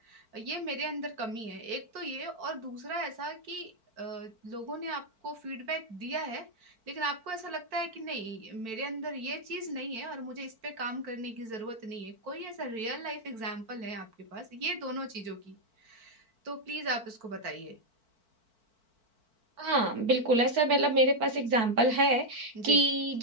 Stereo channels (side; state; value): left; late; 4.5 ms